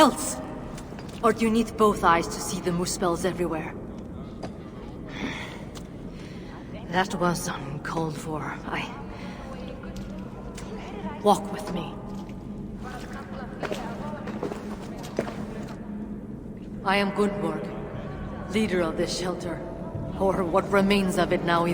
Or do you need both eyes to see the muspels everywhere? That was uncalled for. Walk with me. I am Gunnborg, leader of this shelter. Or what remains of it now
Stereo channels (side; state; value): both; identical; correlation 1.00